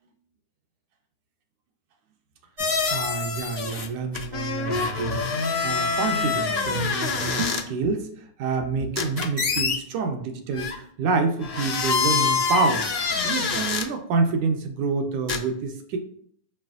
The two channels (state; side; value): late; left; 9.7 ms